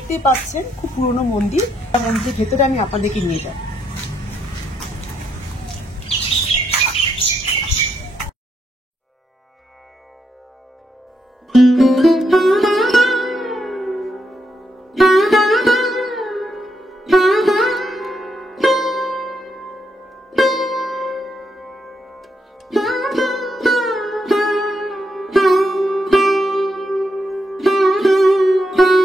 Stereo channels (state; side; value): normal; both; correlation 0.79